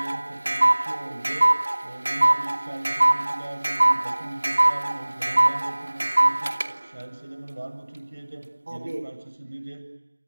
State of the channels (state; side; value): inverted; both; correlation -1.00